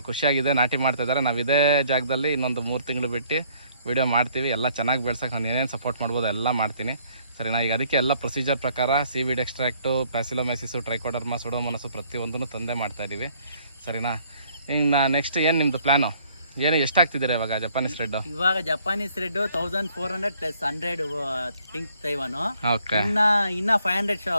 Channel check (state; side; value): inverted; both; correlation -0.63